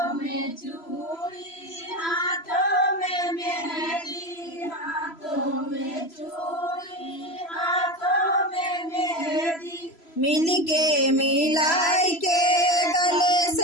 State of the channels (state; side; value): late; right; 3.0 ms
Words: में चूड़ी, हाथों में मेहंदी, हाथों में चूड़ी, हाथों में मेहंदी, मिल के मिलाई के गले